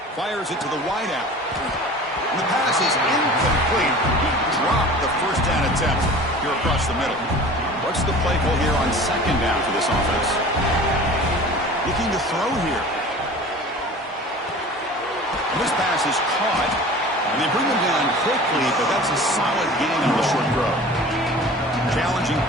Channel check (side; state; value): both; normal; correlation 0.41